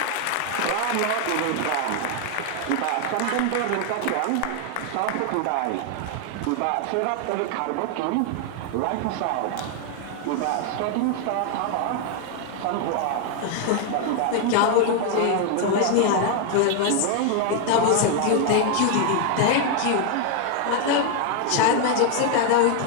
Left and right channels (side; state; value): both; different; correlation 0.00